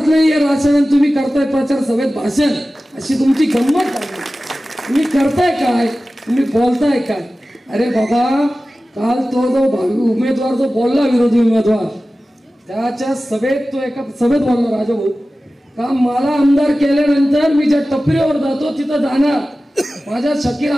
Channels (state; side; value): normal; both; correlation 0.96